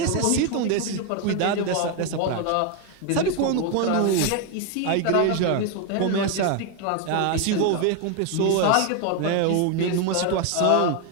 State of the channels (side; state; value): both; different; correlation 0.01